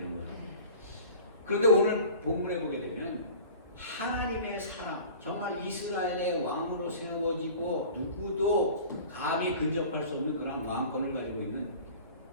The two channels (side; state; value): both; inverted; correlation -0.42